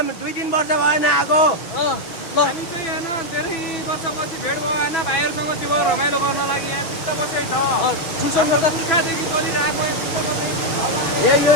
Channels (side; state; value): right; late; 6.3 ms